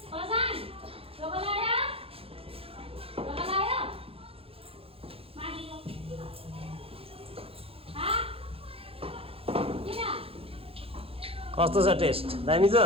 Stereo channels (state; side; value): late; left; 0.27 ms